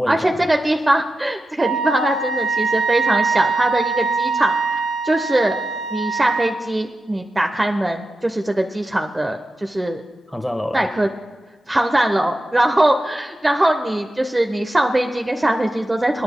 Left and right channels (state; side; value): normal; both; correlation 0.90